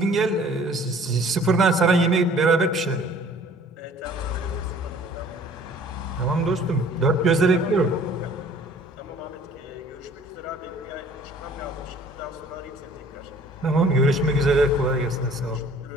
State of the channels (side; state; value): both; normal; correlation 0.53